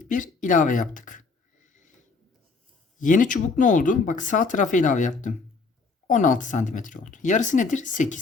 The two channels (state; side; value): quieter; right; 4.3 dB